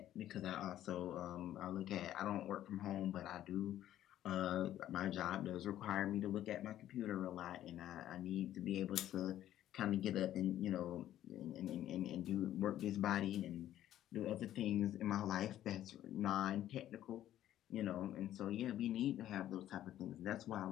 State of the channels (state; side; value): quieter; right; 12.4 dB